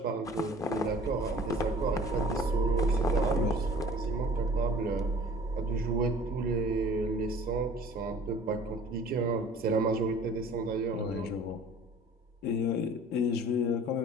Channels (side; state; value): both; normal; correlation 0.48